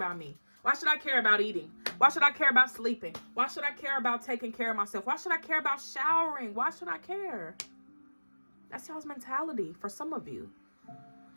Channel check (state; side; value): inverted; both; correlation -1.00